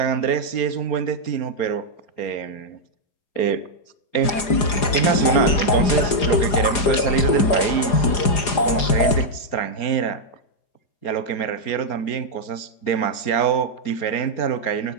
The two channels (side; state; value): right; late; 4.9 ms